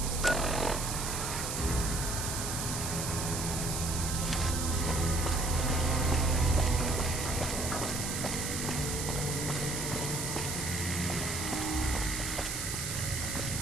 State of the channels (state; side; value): noise; right; hiss, 3 dB below the sound